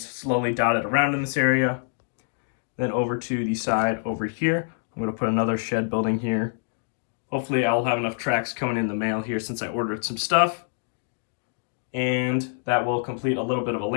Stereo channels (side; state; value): right; silent; digital silence